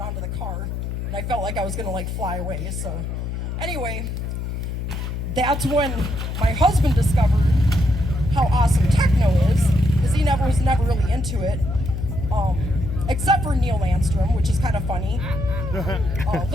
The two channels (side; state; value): left; noise; hum, 4 dB below the sound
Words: on to the car, and I felt like I was gonna fly away, so. Anyway, that's when my husband discovered how awesome techno is, because he was never really into it. Except for Neil Landstrom, which is kind of funny.